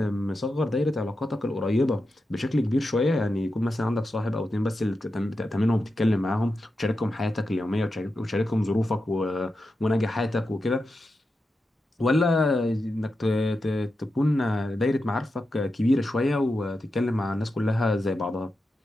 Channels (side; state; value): both; normal; correlation 0.89